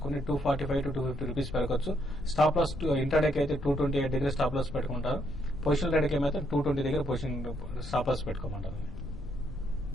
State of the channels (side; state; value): left; noise; rumble, 12 dB below the sound